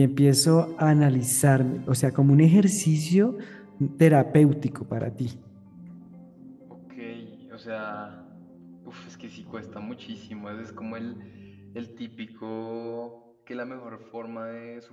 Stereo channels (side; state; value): both; identical; correlation 1.00